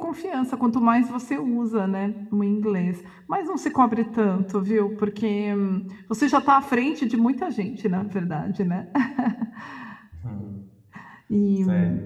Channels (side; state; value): both; identical; correlation 1.00